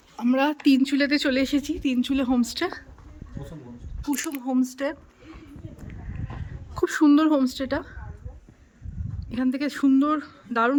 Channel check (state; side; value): identical; both; correlation 1.00